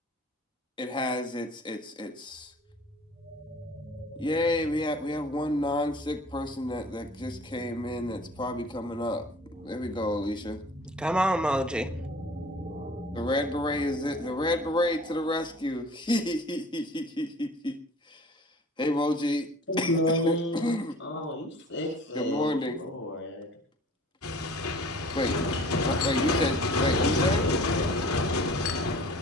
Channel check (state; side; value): normal; both; correlation 0.47